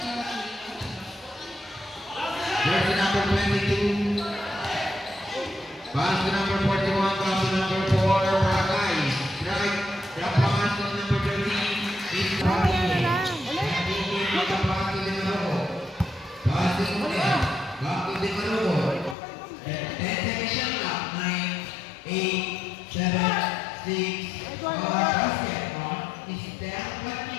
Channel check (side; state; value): right; drops out; at 19.2 s